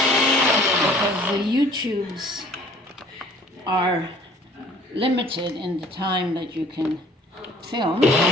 because the YouTubes are limited in the time that you can film. But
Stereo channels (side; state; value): both; normal; correlation 0.53